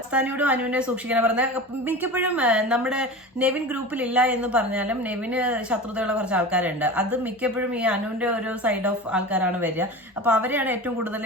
സ്ഥാനിയോടും അനുവിനെ സൂക്ഷിക്കണം പറഞ്ഞ മിക്കപ്പോഴും നമ്മുടെ നെവിൻ ഗ്രൂപ്പിൽ ഇല്ല എന്ന് പറഞ്ഞാലും നെവിന് ശത്രുതയുള്ള കുറച്ച് ആൾക്കാരുണ്ട്. അത് മിക്കപ്പോഴും ഈ അനുവിന്റെ ഒരു സൈഡ് ഓഫ് ആൾക്കാരാണ് വരിക. അപ്പൊ അവരെയാണ് ഏറ്റവും കൂടുതൽ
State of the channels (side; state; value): both; normal; correlation 0.31